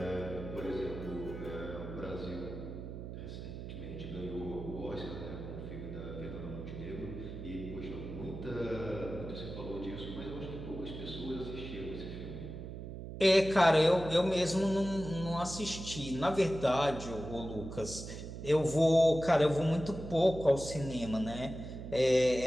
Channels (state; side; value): noise; right; hum, 9 dB below the sound